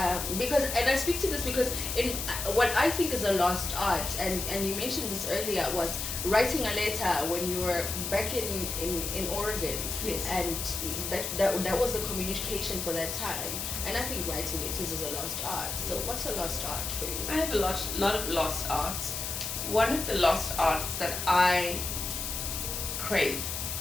Because, and I speak to this because in what I think is a lost art, and you mentioned this earlier, was writing a letter when you were back in Oregon. Yes. And that was the communication for that time. And I think writing letters is a lost art. So what's a lost art for you? I have a lot of lost arts. One of the lost arts that I crave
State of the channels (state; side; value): noise; left; hiss, 4 dB below the sound